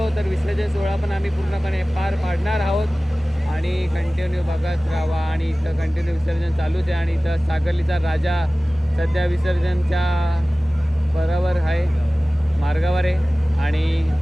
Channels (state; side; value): normal; both; correlation 0.98